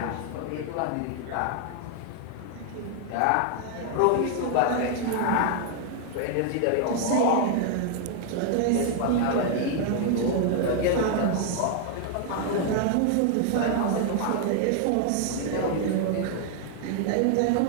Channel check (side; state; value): both; different; correlation 0.00